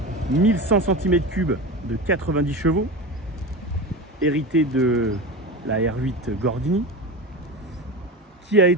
1100 cm3 de 90 chevaux, hérité de la R8 Gordini, qui a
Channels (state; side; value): normal; both; correlation 0.26